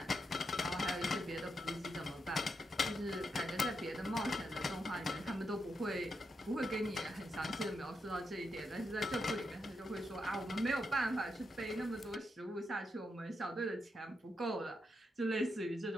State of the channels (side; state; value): both; normal; correlation 0.83